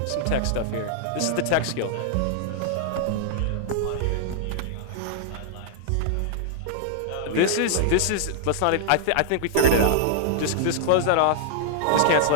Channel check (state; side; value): different; both; correlation -0.01